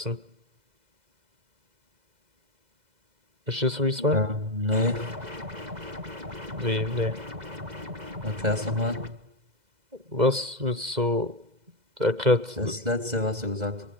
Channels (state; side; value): late; left; 2.0 ms